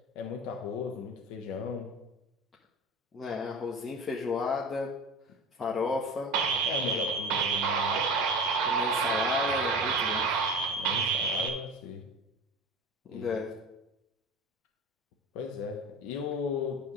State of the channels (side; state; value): both; normal; correlation 0.33